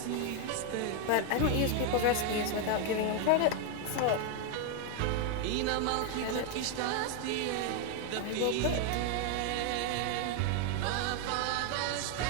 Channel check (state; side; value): different; both; correlation 0.01